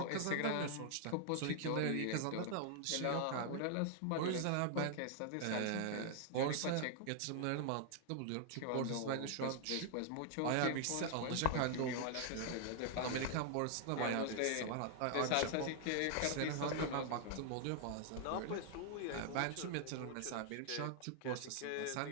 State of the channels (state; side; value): different; both; correlation 0.00